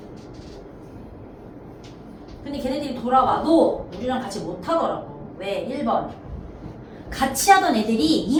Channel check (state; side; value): identical; both; correlation 1.00